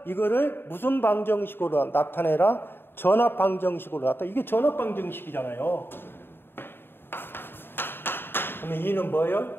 이거를 무슨 방정식으로 나타내라? 전압 방정식으로 나타내. 이게 전압 방정식이잖아요. 그러면 2는 뭐예요?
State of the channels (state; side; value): late; right; 0.10 ms